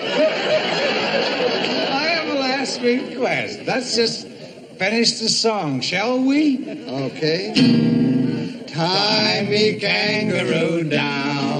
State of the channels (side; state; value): both; identical; correlation 1.00